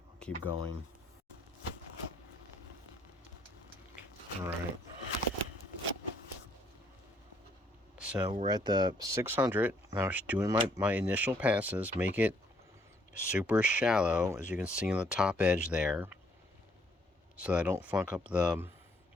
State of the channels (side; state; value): both; normal; correlation 0.67